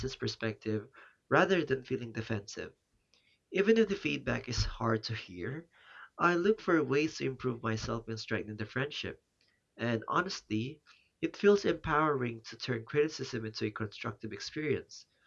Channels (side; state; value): both; identical; correlation 1.00